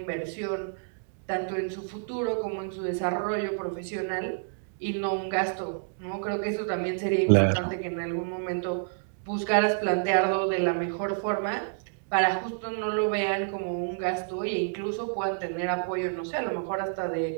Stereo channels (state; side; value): silent; left; digital silence